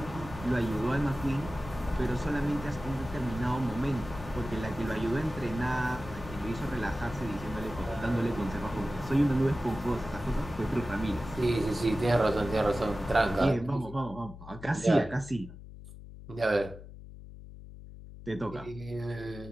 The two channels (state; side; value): noise; left; hum, 15 dB below the sound